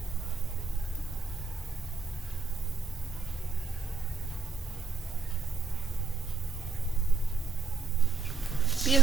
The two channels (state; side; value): quieter; left; 4.1 dB